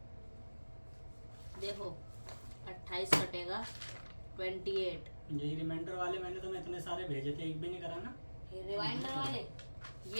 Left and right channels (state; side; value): inverted; both; correlation -1.00